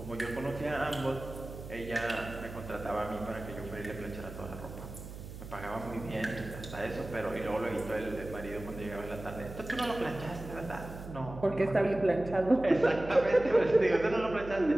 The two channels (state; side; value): noise; right; hum, 12 dB below the sound